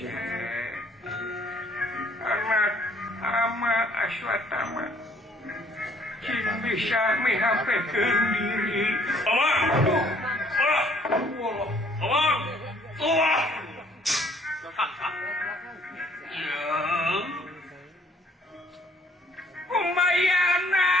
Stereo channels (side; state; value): both; normal; correlation 0.61